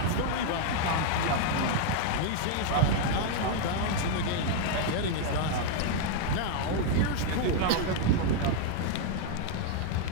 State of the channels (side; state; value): both; different; correlation 0.00